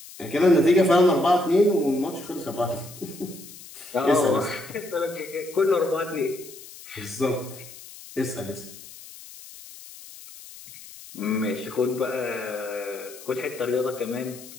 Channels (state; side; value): noise; left; hiss, 17 dB below the sound